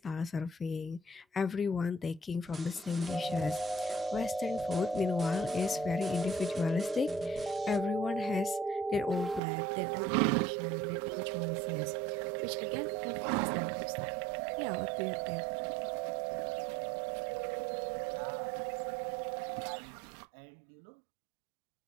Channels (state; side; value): drops out; left; at 9.4 s